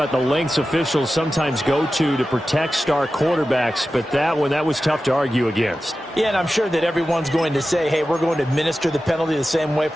the lengths officials sometimes go to protect star quarterbacks, but that was tough to argue against. Yeah, and I'm sure that everyone's going to say, hey, we're going to administer the penalty the same way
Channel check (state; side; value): normal; both; correlation 0.93